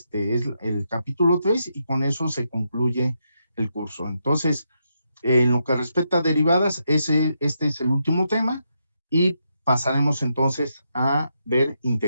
el capítulo 3, y con eso se concluye el curso. Entonces, en lo que respecta a derivadas, este es el último tema, y pasaremos entonces a ver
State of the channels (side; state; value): both; inverted; correlation -0.82